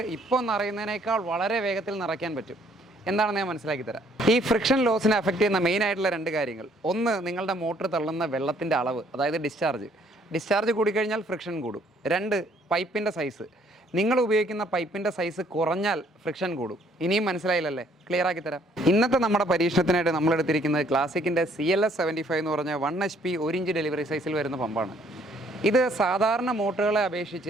ഇപ്പോൾ നിറയുന്നതിനേക്കാൾ വളരെ വേഗത്തിൽ നിറയ്ക്കാൻ പറ്റും. എന്താണെന്ന് ഞാൻ മനസ്സിലാക്കി തരാം. ഈ ഫ്രിക്ഷൻ ലോസിനെ അഫക്റ്റ് ചെയ്യുന്ന മെയിനായിട്ടുള്ള രണ്ട് കാര്യങ്ങൾ: ഒന്ന്, നിങ്ങളുടെ മോട്ടോർ തള്ളുന്ന വെള്ളത്തിൻ്റെ അളവ്, അതായത് ഡിസ്ചാർജ് കൂടിക്കഴിഞ്ഞാൽ ഫ്രിക്ഷൻ കൂടും. രണ്ട്, പൈപ്പിൻ്റെ സൈസ്. നിങ്ങൾ ഉപയോഗിക്കുന്ന പൈപ്പിൻ്റെ സൈസ് കുറഞ്ഞാൽ ഫ്രിക്ഷൻ കൂടും. ഇനിയും മനസ്സിലായില്ലല്ലേ? ക്ലിയർ ആക്കി തരാം. ഇന്നത്തെ നമ്മുടെ പരീക്ഷണത്തിനായിട്ട് നമ്മളെടുത്തിരിക്കുന്നത് ക്ലാസിക്കിൻ്റെ CLS 75 എന്ന് പറഞ്ഞ 1 HP 1 ഇഞ്ച് ഡെലിവറി സൈസിൽ വരുന്ന പമ്പാണ്. ഇത് സാധാരണ മോട്ടറുകളെ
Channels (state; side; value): normal; both; correlation 0.64